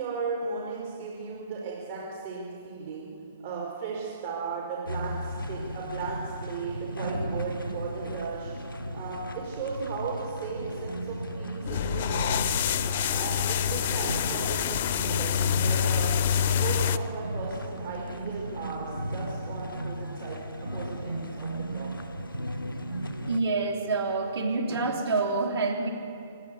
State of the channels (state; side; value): inverted; both; correlation -0.58